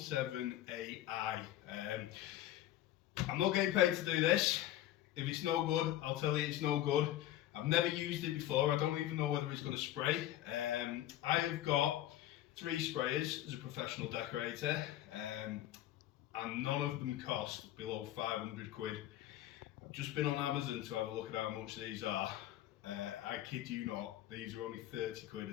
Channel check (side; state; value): right; quieter; 13.3 dB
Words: I'm not getting paid to do this. If it's no good, I'll tell you it's no good. I've never used it before. I don't even know whether it's going to spray. I have got 3 sprayers as a professional decorator. And none of them cost below 500 quid. I've just been on Amazon to have a look at how much these are. I kid you not, these are only 30 quid.